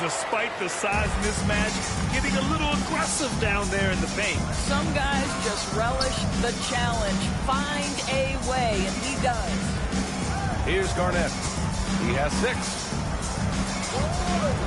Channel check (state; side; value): identical; both; correlation 1.00